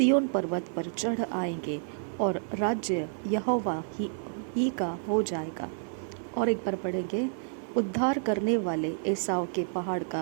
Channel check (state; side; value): silent; left; digital silence